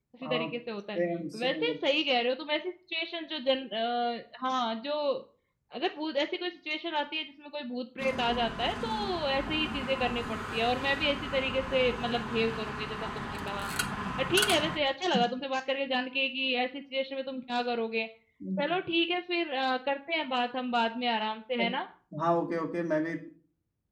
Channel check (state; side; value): identical; both; correlation 1.00